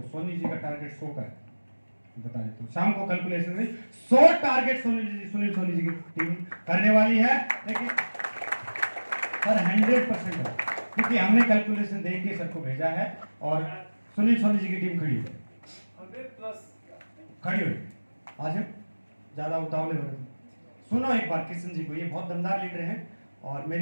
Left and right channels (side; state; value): both; inverted; correlation -1.00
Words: सोनी जी का टारगेट 100 का है, बता देता हूँ। शाम को कैलकुलेशन में 100 टारगेट सुनील सोनी जी की टीम करने वाली है। लेकिन सर 100% है, क्योंकि हमने कैलकुलेशन देख के सर को भेजा है, और सुनील सोनी जी की टीम खड़ी है, 100+ खड़ी हुई। आज ज्यादा उतावले हो रहे थे। सुनो एक बार किशन जी को, ये बहुत दमदार लीडर हैं और